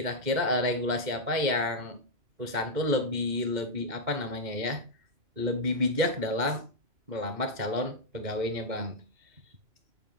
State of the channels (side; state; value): left; late; 2.1 ms